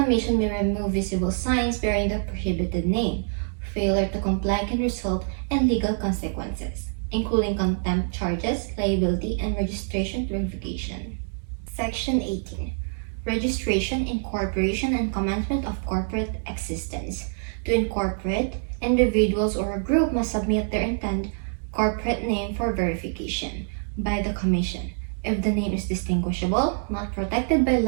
may remove visible signs bearing the prohibited name. Failure to comply can result in legal consequences, including contempt charges, liability, and registration revocation. Section 18. Registration, incorporation, and commencement of corporate existence. To incorporate, individuals or a group must submit their intended corporate name for verification by the Commission. If the name is distinguishable, not protected by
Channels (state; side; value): silent; left; 61 dB below the other